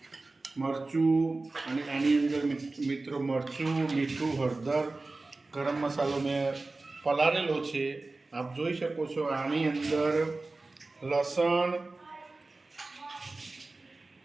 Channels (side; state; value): left; quieter; 3.3 dB